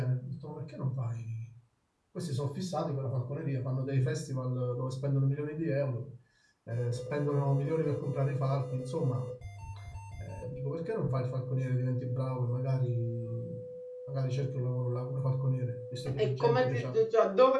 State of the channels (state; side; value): identical; both; correlation 1.00